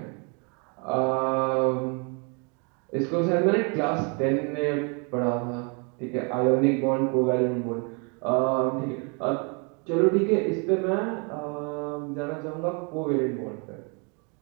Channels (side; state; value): left; quieter; 35.1 dB